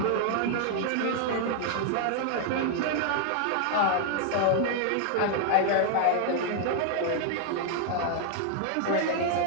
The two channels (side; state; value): both; different; correlation 0.00